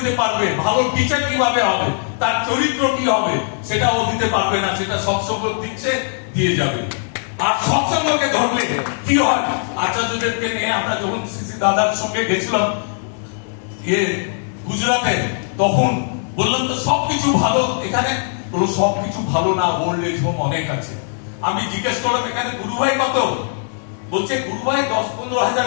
পারবে, ভালো টিচার কিভাবে হবে, তার চরিত্র কি হবে, সেটা ও দিতে পারবে না, সেটা সৎসঙ্গ দিচ্ছে, দিয়ে যাবে। আর সৎসঙ্গকে ধরলে কি হয়, আচার্যদেবকে নিয়ে আমরা যখন সিসি দাদার সঙ্গে গেছিলাম গুজরাটে, তখন বললাম তো সবকিছু ভালো এখানে, বললো সবকিছু ভালো না, ওল্ড এজ হোম অনেক আছে। আমি জিজ্ঞেস করলাম এখানে গুরুভাই কত? বলছে গুরুভাই 10-15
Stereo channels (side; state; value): right; silent; digital silence